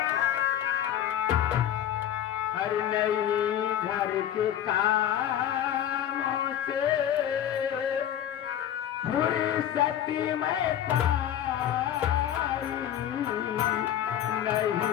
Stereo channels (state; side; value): quieter; right; 10.7 dB